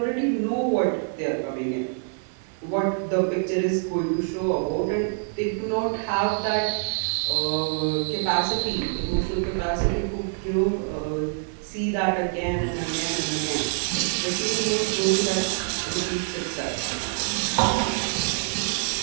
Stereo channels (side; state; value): left; silent; 60 dB below the other